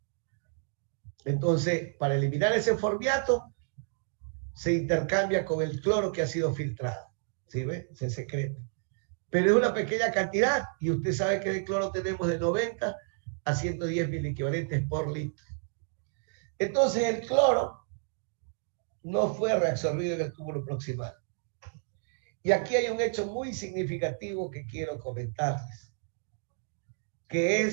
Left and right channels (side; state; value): left; silent; digital silence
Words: Entonces, para eliminar ese formiato, se intercambia con el cloro que ha sido filtrado. ¿Sí ve? Se secreta. Pero es una pequeña cantidad, y usted sabe que de cloro tenemos de 90 a 110 miliequivalentes por litro. Entonces, el cloro no fue reabsorbido en el túbulo proximal. Y aquí hay un hecho muy significativo que quiero comentarles, que